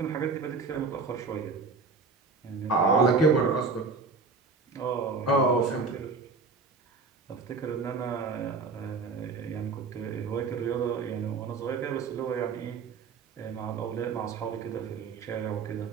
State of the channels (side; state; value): left; quieter; 4.5 dB